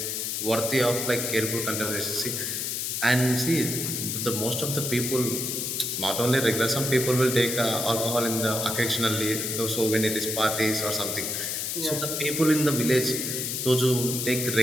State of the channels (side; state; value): left; noise; hiss, 2 dB below the sound